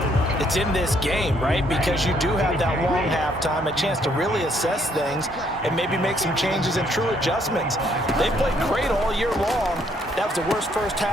it's in this game, right? Because you do have that long halftime, a chance to really assess things and maybe make some changes and true adjustments. They played great all year long. That was the worst first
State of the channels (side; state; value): both; normal; correlation 0.68